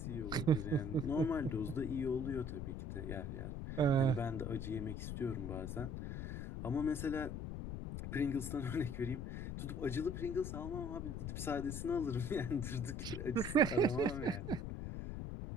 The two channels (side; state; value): left; noise; rumble, 5 dB below the sound